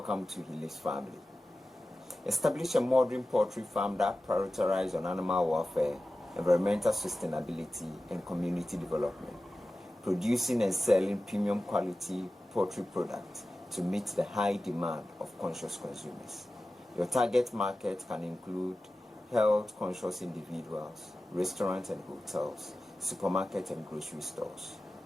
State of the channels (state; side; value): normal; both; correlation 0.95